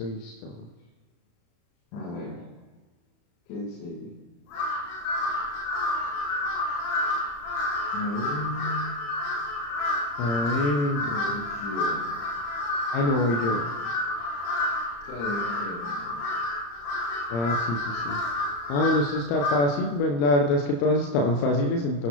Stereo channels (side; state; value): right; late; 35 ms